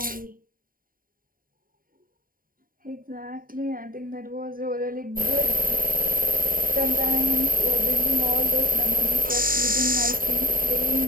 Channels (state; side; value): late; left; 0.41 ms